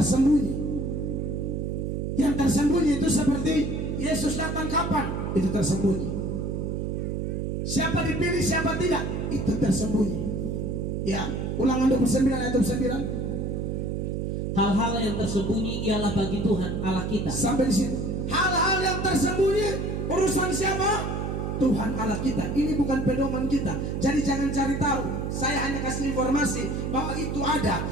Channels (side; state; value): right; noise; hum, 2 dB below the sound